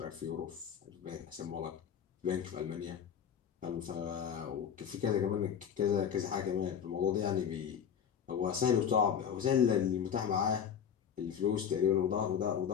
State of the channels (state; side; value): quieter; right; 8.1 dB